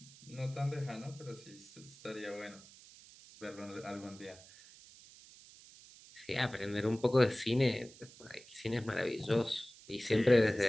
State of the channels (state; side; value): noise; right; hiss, 21 dB below the sound